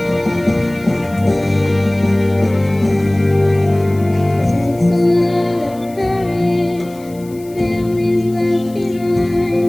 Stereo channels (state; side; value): noise; left; hiss, 24 dB below the sound